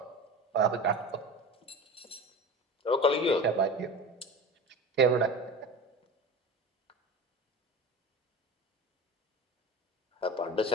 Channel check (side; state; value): both; normal; correlation 0.33